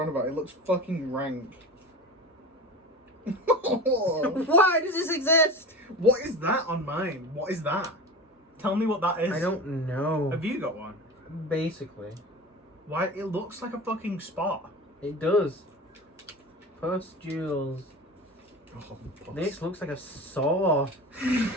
on about. It looks fucking rank. Why does this exist? What is that on mine? What is that? Tell me what that is. I don't know. Have you got one? Basically, Why? It looks like a fucking spot. it does. Pustules. Oh, This looks like a saw.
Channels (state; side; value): normal; both; correlation 0.31